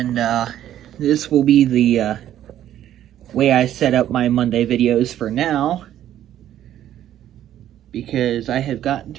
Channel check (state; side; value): quieter; left; 11.7 dB